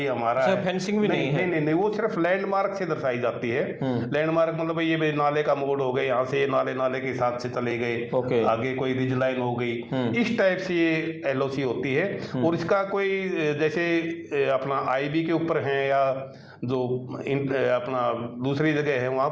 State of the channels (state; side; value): identical; both; correlation 1.00